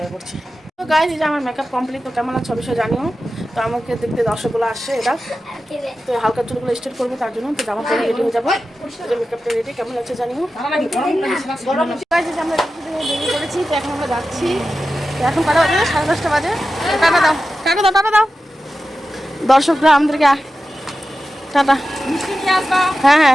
করছি। তো গাইস, এই যে আমার মেকআপ কমপ্লিট। তো কেমন আছে অবশ্যই জানিও। তো আমাকে দেখতে দর্শকগুলো আসছে, এটা তো হালকা চুলগুলো স্ট্রেট করবো, তার জন্য তো জামা পরে রেডি হয়ে যাবো। মেকআপটা রেডি, কেমন আছে জানিও। আমরা বেরিয়ে পড়েছি। তো এখন আমরা যাচ্ছি। তো এখন কটা বাজে? 10:30 বাজে। টাটা দাও, টাটা দাও, টাটা দাও দর্শকরা আমাদেরকে। টাটা। হ্যাঁ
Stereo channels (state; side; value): normal; both; correlation 0.92